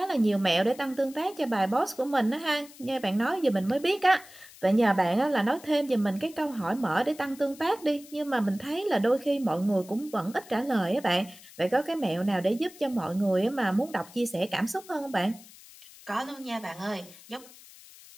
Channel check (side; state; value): left; noise; hiss, 20 dB below the sound